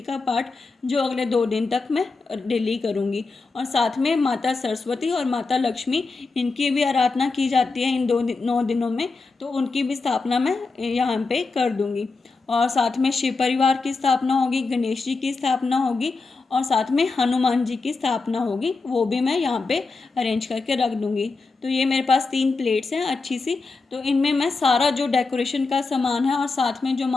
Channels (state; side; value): quieter; right; 4.0 dB